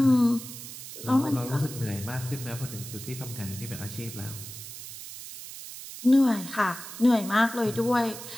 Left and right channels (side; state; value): right; noise; hiss, 12 dB below the sound